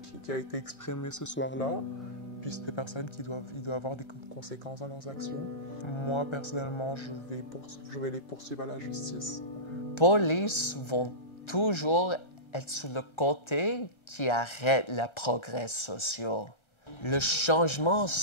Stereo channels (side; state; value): right; late; 1.3 ms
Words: a été exprimé ce soir-là. Puis c'est des personnes qui doivent avoir des conséquences dans leurs actions. Moi, personnellement, je vais les poursuivre à la justice. Police vont toujours être sur le côté qui arrête le progrès social. Le changement